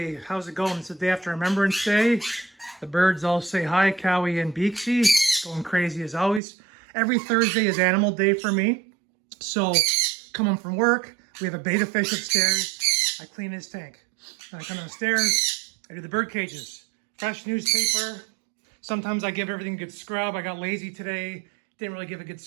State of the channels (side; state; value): left; drops out; at 6.4 s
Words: How's it going? It's the day after Remembrance Day. The birds all say hi, Cowie and Beaksy. Going crazy as always. Every Thursday is Animal Day for me. So, come home from work, we have a betta fish upstairs. I clean his tank. Then I come downstairs, I do the bird cages. Fresh newspaper. Sometimes I give everything a good scrub. I got lazy today. Didn't really give a good